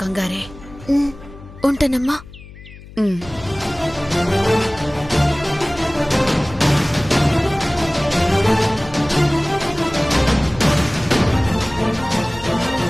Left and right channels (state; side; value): noise; left; hum, 18 dB below the sound